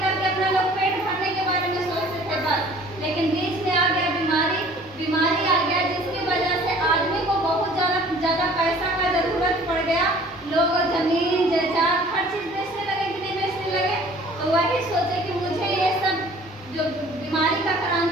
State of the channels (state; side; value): normal; both; correlation 0.51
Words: करके अपना लोग पेट भरने के बारे में सोचते थे बस, लेकिन बीच में आ गया बीमारी आ गया, जिसकी वजह से आदमी को बहुत ज़्यादा पैसा का जरूरत पड़ गया। लोग जमीन जायदाद हर चीज़ बेचने लगे कि नहीं बेचने लगे। तो वही सोचे कि मुझे ये सब जो बीमारी का